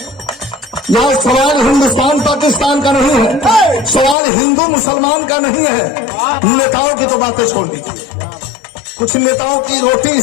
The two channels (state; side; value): drops out; right; at 4.2 s